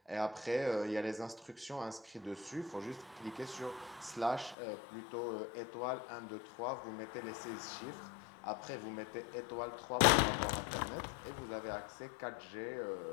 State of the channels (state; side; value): drops out; right; at 4.5 s